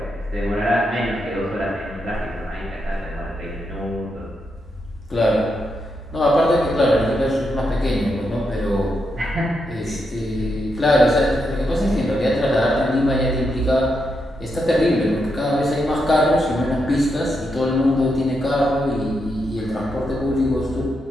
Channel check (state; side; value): normal; both; correlation 0.83